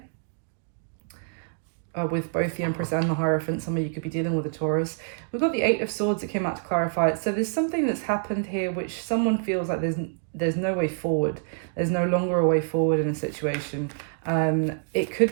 With both the Empress and the Hierophant. Some of you could be dealing with a Taurus. We've got the Eight of Swords that came out to clarify it. So there's something that's happened here which someone feels like there's no way forward. There's no longer a way forward in a situation. It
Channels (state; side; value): silent; left; digital silence